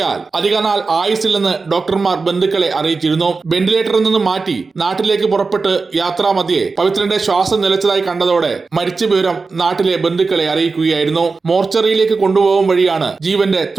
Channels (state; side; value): quieter; left; 4.3 dB